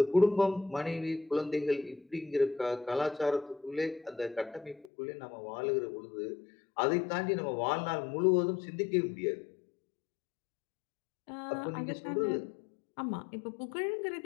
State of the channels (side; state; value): right; drops out; at 4.9 s